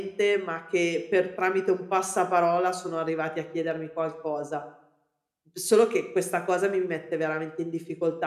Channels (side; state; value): both; identical; correlation 1.00